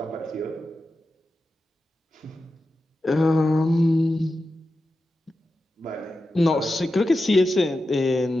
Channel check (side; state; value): both; normal; correlation 0.91